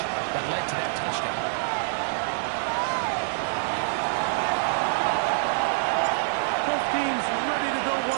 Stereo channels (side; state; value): left; silent; digital silence